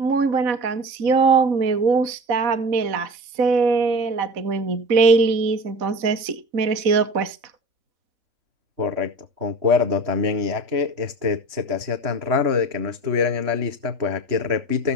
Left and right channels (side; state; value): left; late; 4.0 ms